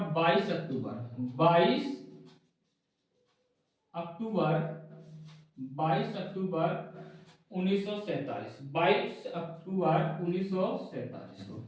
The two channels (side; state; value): both; identical; correlation 1.00